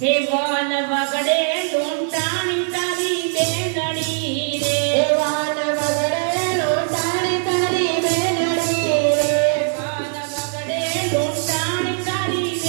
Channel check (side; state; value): left; silent; digital silence